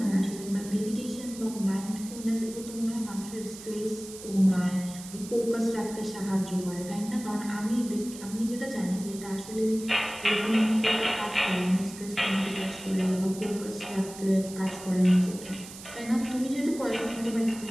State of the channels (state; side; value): noise; right; hiss, 14 dB below the sound